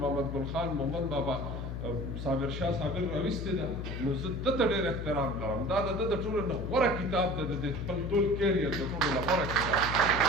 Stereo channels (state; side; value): noise; left; hum, 5 dB below the sound